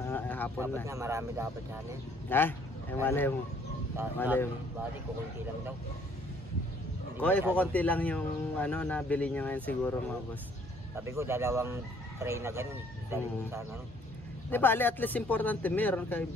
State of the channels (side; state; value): both; normal; correlation 0.61